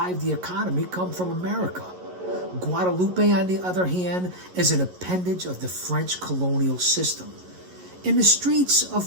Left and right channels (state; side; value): late; left; 11 ms